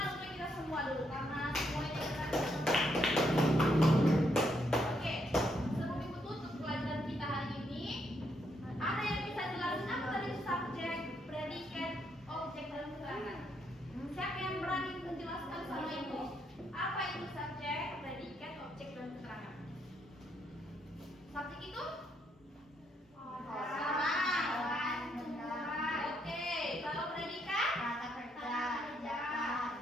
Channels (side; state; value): both; normal; correlation 0.76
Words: untuk kita semua dulu karena semuanya kita. Oke, sebelum ibu tutup pelajaran kita hari ini, ada yang bisa jelasin apa tadi subjek, predikat, objek dan keterangan? Siapa yang berani menjelaskan sama ibu? Apa itu subjek, predikat, objek dan keterangan? Subjek itu? Orang. Oke, kalau predikat?